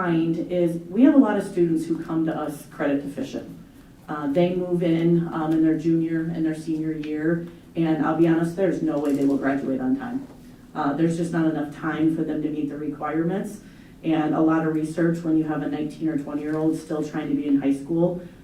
is we have a lot of students who come to us credit deficient. They move in their junior and their senior year, and I'll be honest, there's no way they will graduate on time. There's just not enough time for them to meet the requirements. And a lot of research, when you have a 19 or 20-year-old still trying to be in high school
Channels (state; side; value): identical; both; correlation 1.00